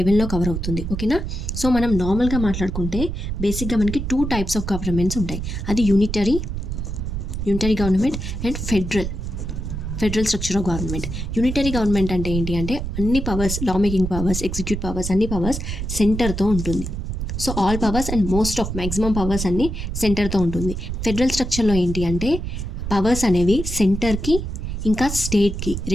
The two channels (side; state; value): right; noise; rumble, 4 dB below the sound